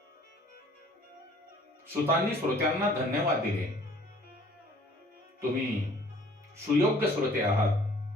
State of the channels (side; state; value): both; normal; correlation 0.55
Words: सुतांनी श्रोत्यांना धन्यवाद दिले. तुम्ही सुयोग्य श्रोते आहात,